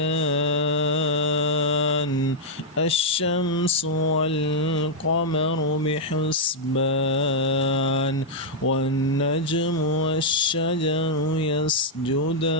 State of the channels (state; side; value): normal; both; correlation -0.05